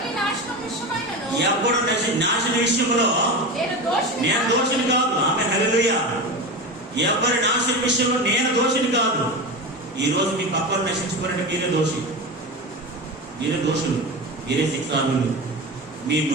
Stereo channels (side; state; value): both; normal; correlation 0.24